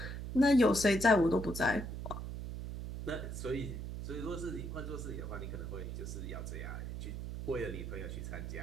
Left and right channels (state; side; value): noise; right; hum, 6 dB below the sound